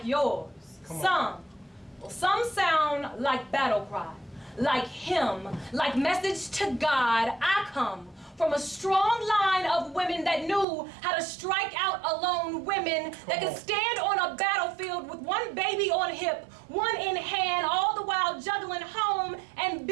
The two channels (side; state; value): left; drops out; at 10.7 s